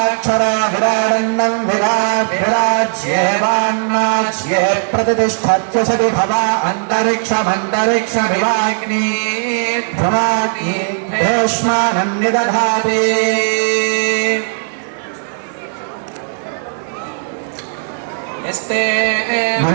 विराग्भिराज्येवान्नाज्ये प्रतिष्ठत्यसति भवा अन्तरिक्षमन्तरिक्षमिवाग्नि भ्रमाग्नि भीष्मानं निदधाति यस्ते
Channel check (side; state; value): left; silent; 62 dB below the other